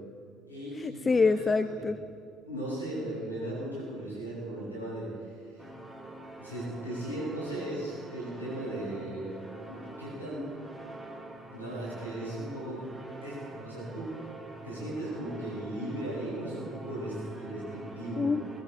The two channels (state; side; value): normal; both; correlation 0.72